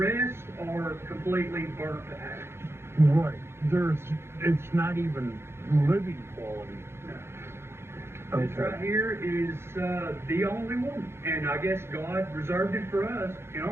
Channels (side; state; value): left; late; 0.12 ms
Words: are completely burnt to ash. Right. It's not even living quality. No. This right here is the only one, and I guess God reserved it for us in